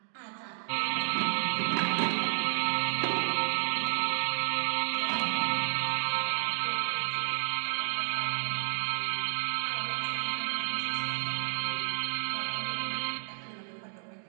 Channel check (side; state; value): left; silent; 56 dB below the other